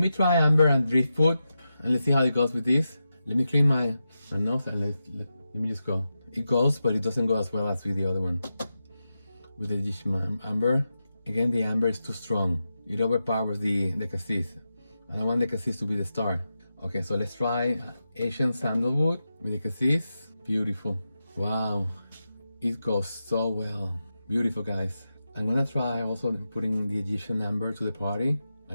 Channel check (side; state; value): both; inverted; correlation -0.90